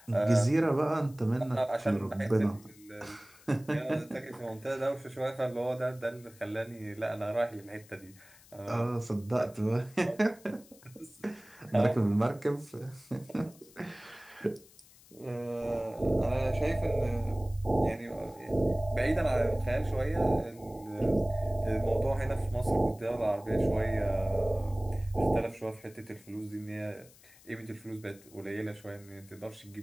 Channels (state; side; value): noise; left; hiss, 25 dB below the sound